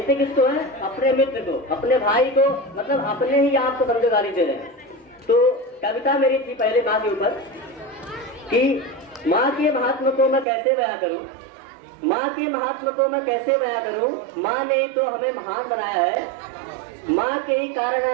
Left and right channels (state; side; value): drops out; left; at 10.5 s